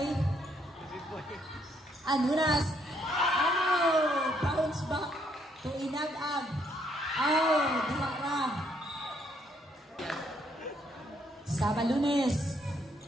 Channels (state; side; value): normal; both; correlation 0.71